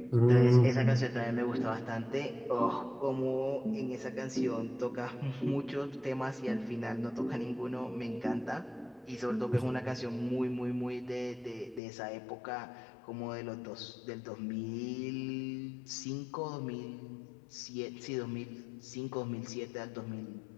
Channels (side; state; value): right; drops out; at 11.8 s